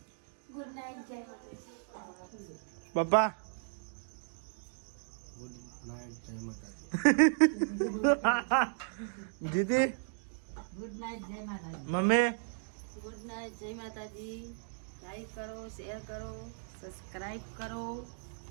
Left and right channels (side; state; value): left; silent; digital silence